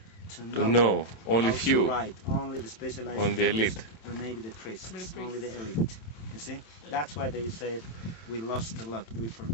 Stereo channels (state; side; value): late; right; 27 ms